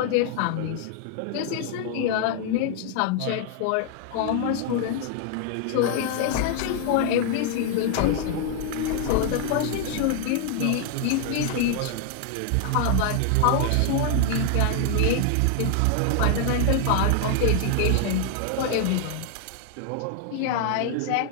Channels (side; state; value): both; different; correlation 0.00